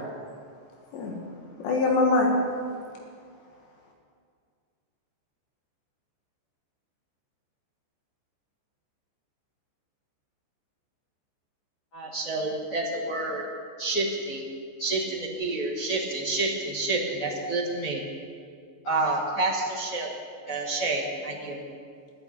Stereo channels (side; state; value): right; late; 14 ms